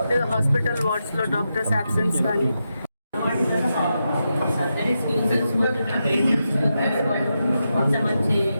లేదా హాస్పిటల్ వార్డ్స్లో డాక్టర్స్ అబ్సెన్స్ కానీ మంచి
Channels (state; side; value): inverted; both; correlation -0.87